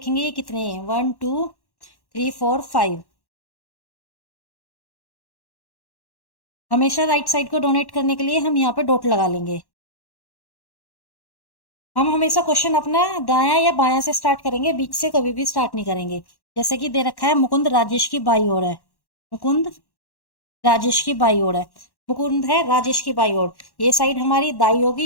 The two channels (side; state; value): right; late; 1.1 ms